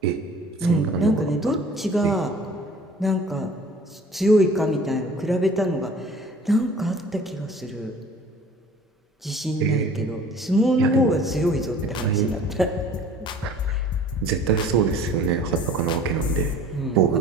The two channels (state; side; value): normal; both; correlation 0.48